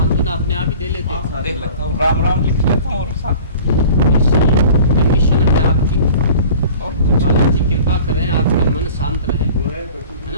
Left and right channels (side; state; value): both; inverted; correlation -0.44